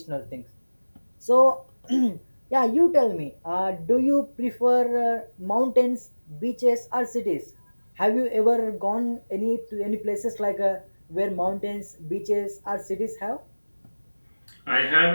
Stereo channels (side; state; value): both; inverted; correlation -1.00